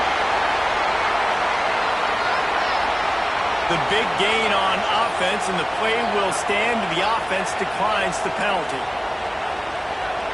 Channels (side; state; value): both; identical; correlation 1.00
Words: The big gain on offense, and the play will stand. The offense declines the penalty.